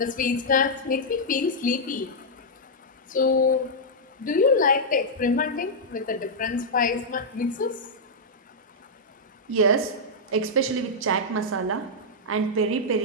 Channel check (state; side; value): normal; both; correlation -0.07